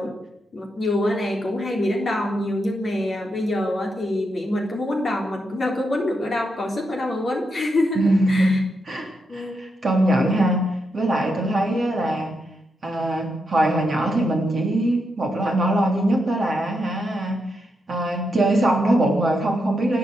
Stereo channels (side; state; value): both; normal; correlation 0.83